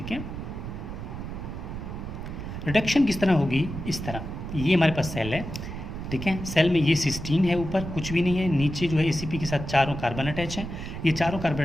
है। रिडक्शन किस तरह होगी, इस तरह, ये हमारे पास सेल है, ठीक है, सेल में ये सिस्टीन है, ऊपर कुछ भी नहीं है, नीचे जो है ACP के साथ चारों कार्बन अटैच हैं, ये चारों कार्बन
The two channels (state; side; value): noise; right; rumble, 7 dB below the sound